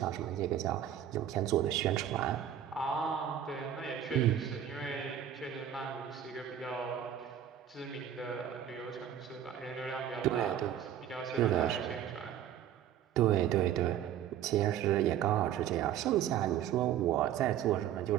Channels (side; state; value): left; quieter; 10.3 dB